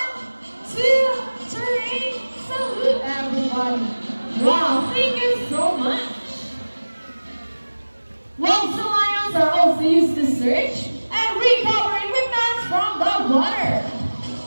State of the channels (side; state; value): both; inverted; correlation -1.00